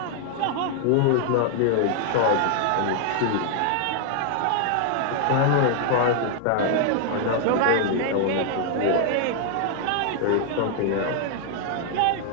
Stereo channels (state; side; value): different; both; correlation 0.00